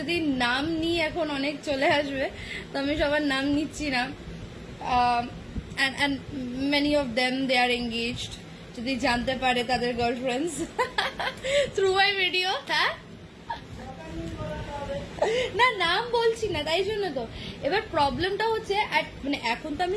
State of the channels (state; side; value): identical; both; correlation 1.00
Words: নাম নিই এখন অনেক চলে আসবে, তো আমি সবার নাম নিচ্ছি না। and many of them they are engaged, যদি জানতে পারে তাদের গার্লফ্রেন্ডস থ্রু মাই ভিডিও। হ্যাঁ, না নাম বলছি না, তাই জন্য তো। এবার প্রবলেমটা হচ্ছে মানে এখন তো